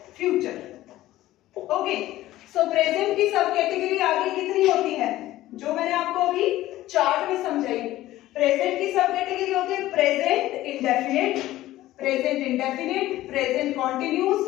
future. Okay, so present की सब कैटेगरी आगे कितनी होती है जो मैंने आपको अभी चार्ट में समझाई. प्रेजेंट की सब कैटेगरी होती है present indefinite, present continuous,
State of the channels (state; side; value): quieter; right; 15.4 dB